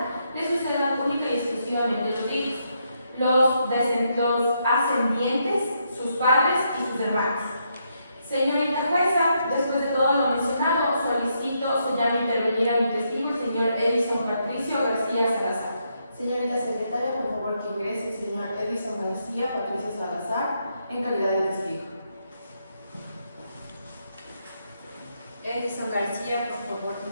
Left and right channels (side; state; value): both; inverted; correlation -0.78